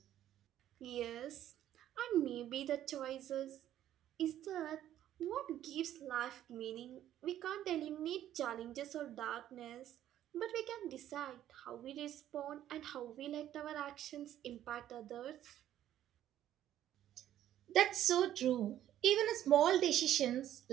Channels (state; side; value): quieter; left; 11.9 dB